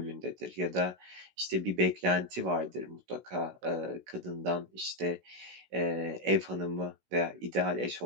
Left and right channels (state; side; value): late; left; 16 ms